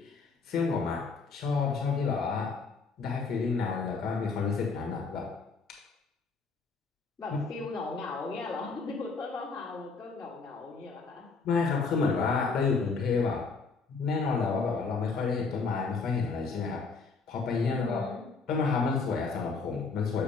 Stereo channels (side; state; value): right; quieter; 4.5 dB